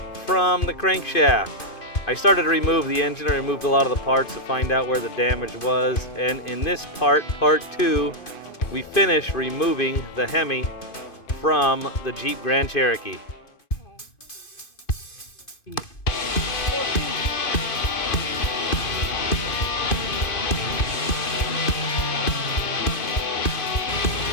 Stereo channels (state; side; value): late; right; 2.5 ms